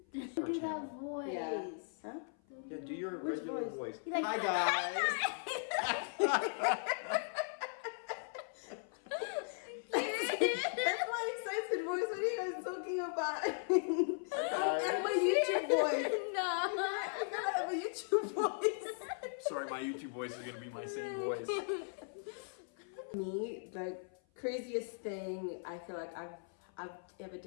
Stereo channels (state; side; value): silent; right; 52 dB below the other